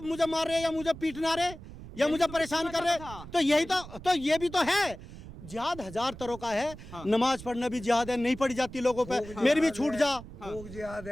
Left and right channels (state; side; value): noise; right; rumble, 14 dB below the sound